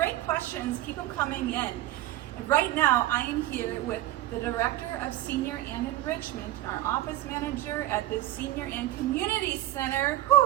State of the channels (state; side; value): quieter; left; 15.1 dB